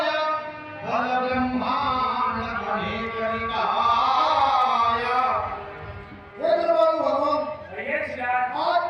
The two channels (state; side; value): identical; both; correlation 1.00